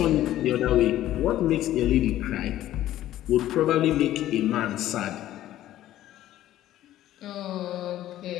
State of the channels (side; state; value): right; quieter; 13.5 dB